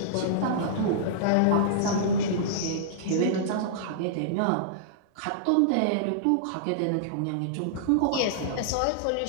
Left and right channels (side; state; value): both; different; correlation -0.02